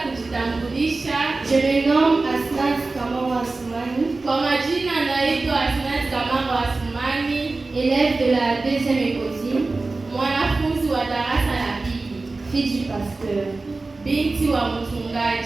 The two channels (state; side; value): quieter; left; 3.5 dB